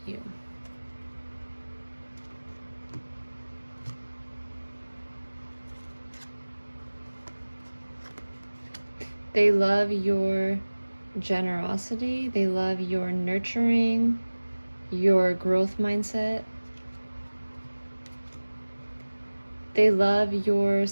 you. They love your generosity. They love your nurturing, your growth mindset. They love your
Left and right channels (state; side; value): inverted; both; correlation -1.00